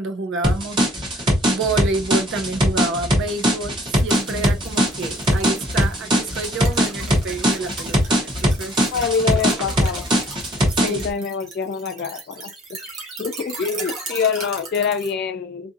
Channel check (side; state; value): both; normal; correlation 0.55